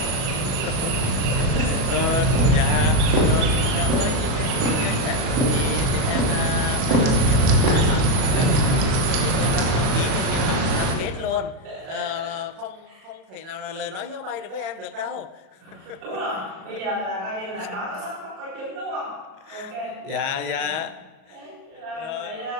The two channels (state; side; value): late; left; 37 ms